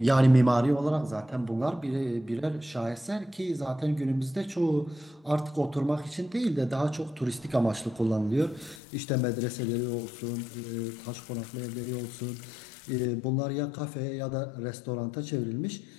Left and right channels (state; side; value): drops out; right; at 8.8 s